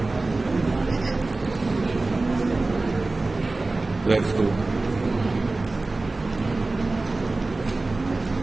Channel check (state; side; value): quieter; left; 3.3 dB